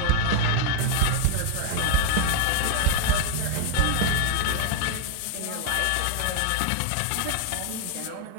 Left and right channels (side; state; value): both; different; correlation 0.01